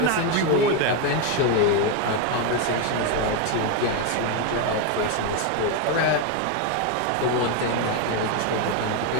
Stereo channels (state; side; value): different; both; correlation 0.02